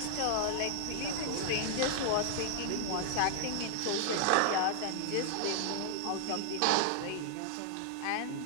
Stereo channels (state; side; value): different; both; correlation 0.00